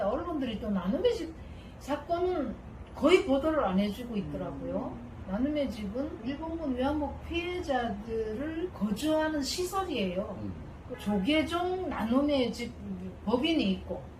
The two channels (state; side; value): identical; both; correlation 1.00